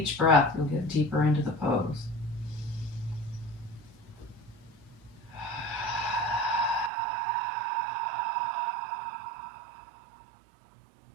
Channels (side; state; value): left; drops out; at 6.9 s